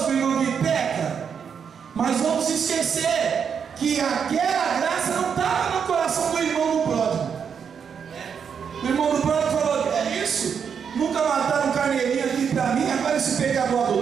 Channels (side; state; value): left; quieter; 7.0 dB